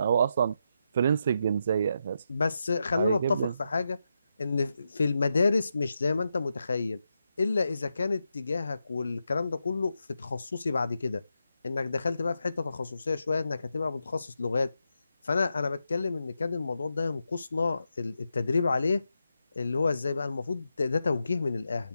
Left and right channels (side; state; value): both; inverted; correlation -0.85